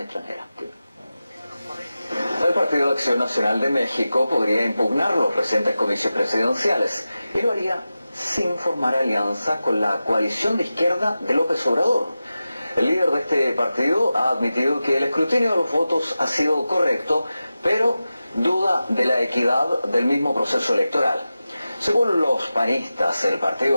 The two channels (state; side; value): inverted; both; correlation -0.94